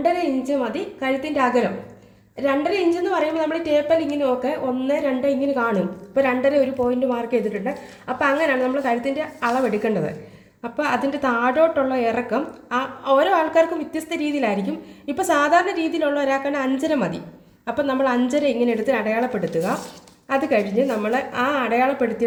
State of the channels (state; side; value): identical; both; correlation 1.00